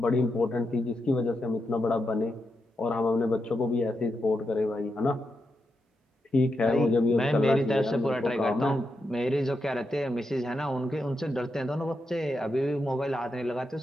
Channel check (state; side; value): normal; both; correlation 0.85